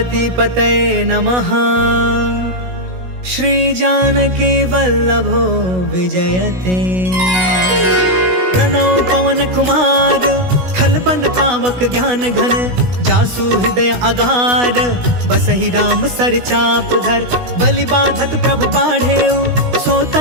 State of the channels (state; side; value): late; left; 16 ms